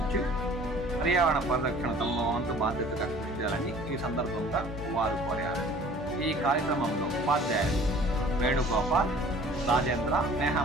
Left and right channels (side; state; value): both; normal; correlation 0.49